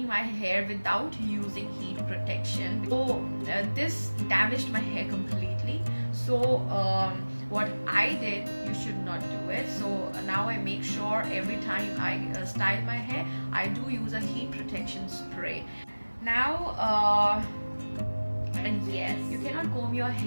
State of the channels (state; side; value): inverted; both; correlation -1.00